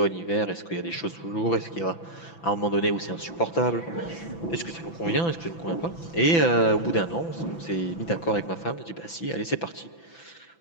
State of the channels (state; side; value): late; right; 6.0 ms